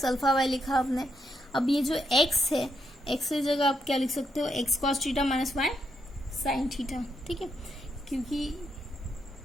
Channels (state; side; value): normal; both; correlation 0.79